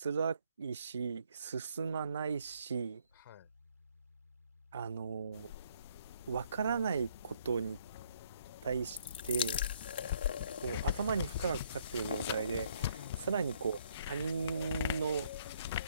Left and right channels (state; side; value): inverted; both; correlation -0.66